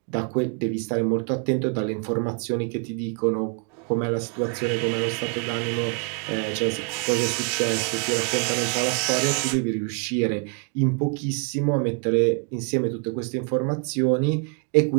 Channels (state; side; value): quieter; left; 37.8 dB